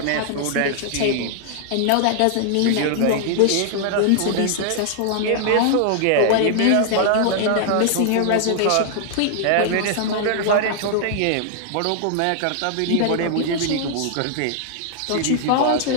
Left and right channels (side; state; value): both; different; correlation 0.00